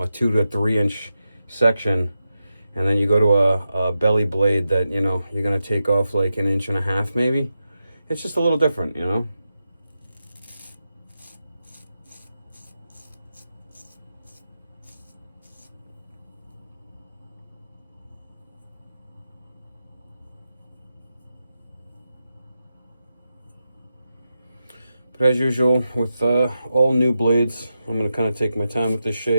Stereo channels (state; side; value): inverted; both; correlation -0.89